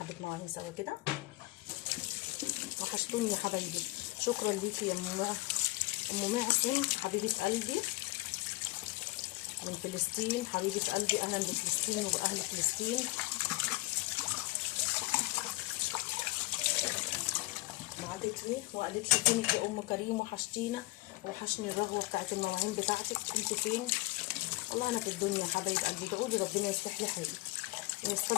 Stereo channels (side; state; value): right; quieter; 21.7 dB